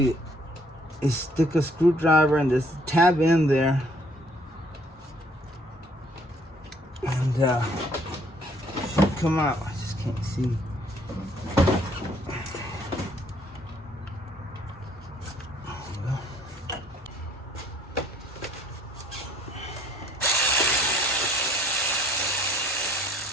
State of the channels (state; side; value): normal; both; correlation 0.60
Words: is stick a screwdriver and this tab in there, and should come out. I just can't see.